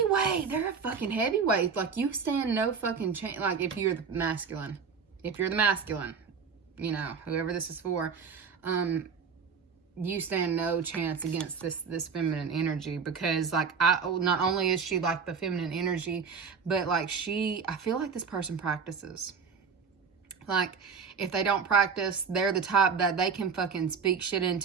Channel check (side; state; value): left; quieter; 5.8 dB